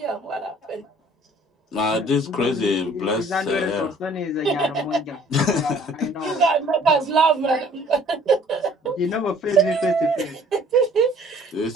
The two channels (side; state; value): both; normal; correlation 0.55